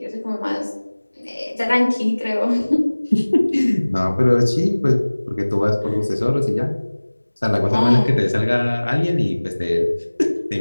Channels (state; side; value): inverted; both; correlation -1.00